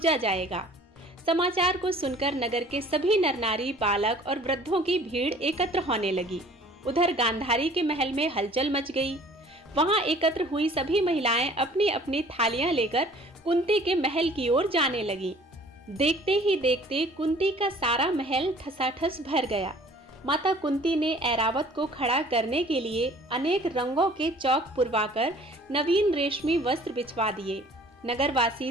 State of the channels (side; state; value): both; normal; correlation 0.51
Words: जाएगा। समाचार को सुनकर नगर के सभी नर नारी, बालक और वृद्धों की भीड़ एकत्र होने लगी। उधर गांधारी के महल में हलचल मच गई। वहां एकत्र हुई सभी महिलाएं अपनी अपनी थालियां लेकर कुंती के महल की ओर जाने लगी। देखते ही देखते कुंती का सारा महल ठसाठस भर गया। माता कुंती ने ऐरावत को खड़ा करने के लिए अनेक रंगों के चौक पुरवाकर नवीन रेशमी वस्त्र बिछवा दिए।